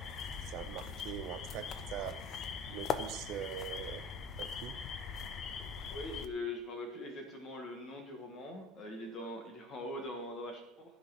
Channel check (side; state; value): both; normal; correlation 0.41